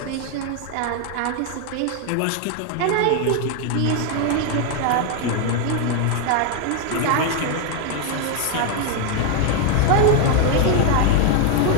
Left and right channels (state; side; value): different; both; correlation 0.01